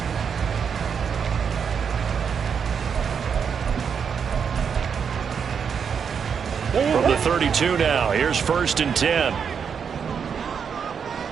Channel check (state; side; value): quieter; left; 6.9 dB